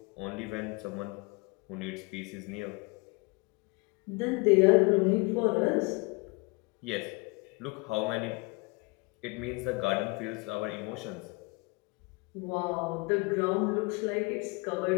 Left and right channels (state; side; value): quieter; right; 27.9 dB